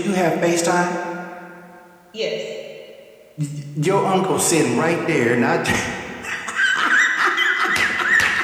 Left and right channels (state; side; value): identical; both; correlation 1.00